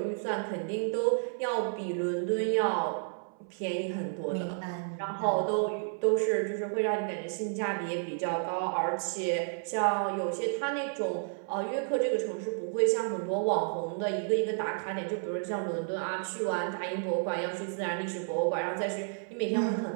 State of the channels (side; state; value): left; silent; 57 dB below the other